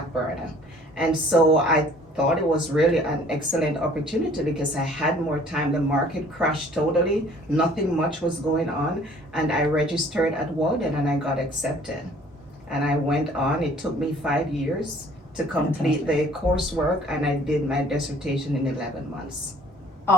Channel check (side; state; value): both; normal; correlation 0.54